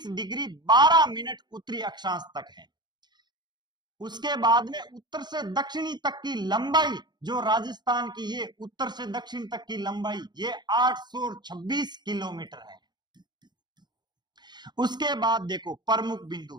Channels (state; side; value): late; left; 0.21 ms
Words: डिग्री 12 मिनट उत्तरी अक्षांश तक है। उसके बाद में उत्तर से दक्षिणी तक की लंबाई जो राजस्थान की, ये उत्तर से दक्षिण तक की लंबाई ये 826 किलोमीटर है। उसके बाद देखो प्रमुख